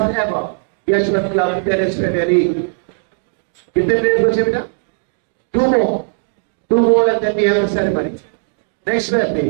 ever Yeshwant Club Tennis Premier League. कितने players बचे बेटा? Two more. Two more and then we have the ceremony. Next player,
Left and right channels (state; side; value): silent; left; digital silence